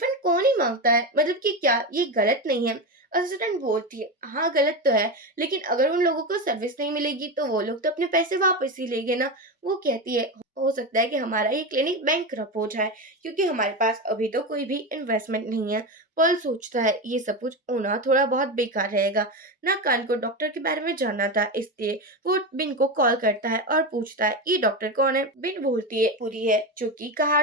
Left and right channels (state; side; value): normal; both; correlation 0.17